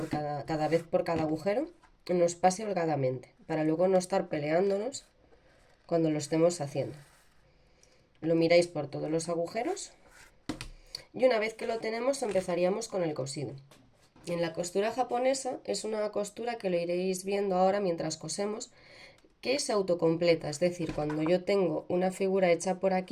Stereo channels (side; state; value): both; identical; correlation 1.00